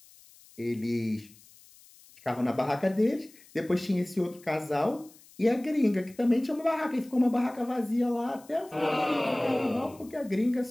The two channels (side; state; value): left; noise; hiss, 25 dB below the sound